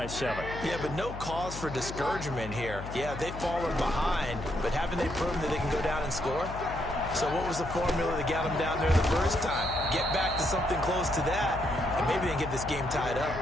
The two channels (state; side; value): noise; left; hum, 10 dB below the sound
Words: 7. Yeah, but no cause for discouragement here. Yeah, they've fallen behind, but haven't they proven that they can go down and score? So what was the formula that got them down there the first time? Get back to something close to that, and maybe they can get this game tied up.